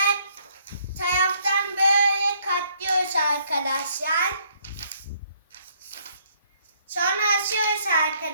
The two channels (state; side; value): inverted; both; correlation -0.66